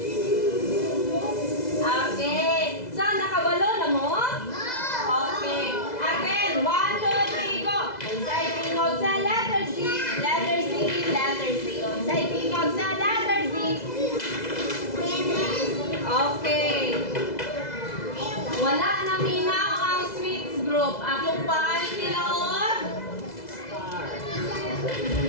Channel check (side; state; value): right; late; 2.0 ms